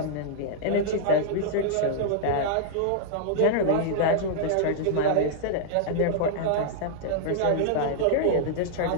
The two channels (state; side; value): different; both; correlation -0.02